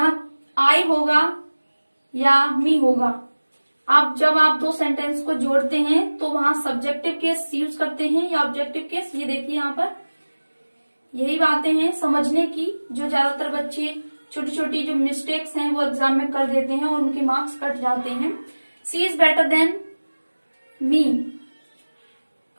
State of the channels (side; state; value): both; inverted; correlation -1.00